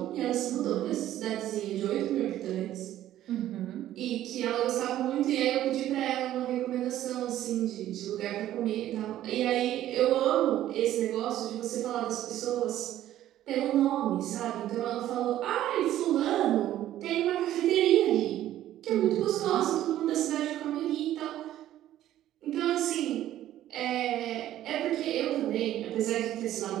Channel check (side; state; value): left; quieter; 12.9 dB